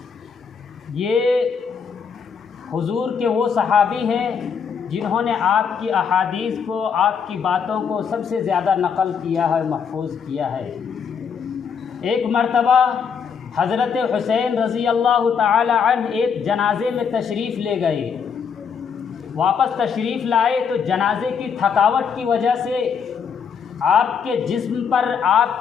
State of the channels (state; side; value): quieter; right; 6.6 dB